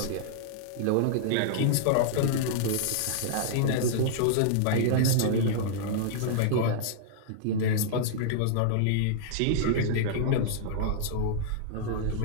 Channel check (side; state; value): both; different; correlation -0.02